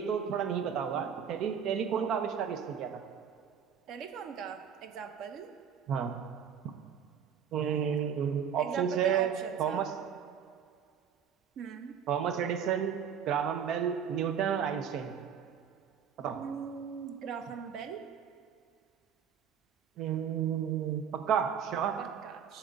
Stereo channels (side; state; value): left; quieter; 7.8 dB